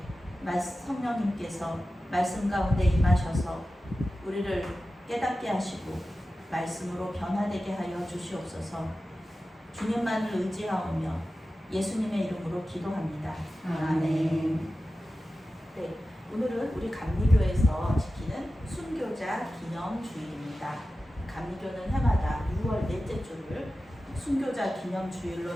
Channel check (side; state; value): both; normal; correlation 0.94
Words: 성령님께서 말씀 가운데 임하셔서 우리를 깨닫게 하시고 말씀으로 변화되게 하여 주시옵소서. 주님만을 의지하오며 예수님의 이름으로 기도합니다. 아멘. 네, 오늘은 우리 감리교에서 지키는 순교자 기념주일입니다. 감리교는 해마다 6월 넷째 주를 순교자 기념주일로